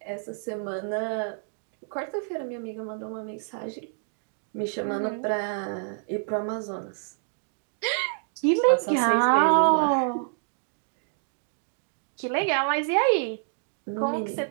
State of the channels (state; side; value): silent; left; digital silence